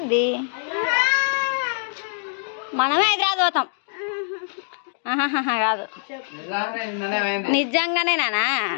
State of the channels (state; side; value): silent; right; digital silence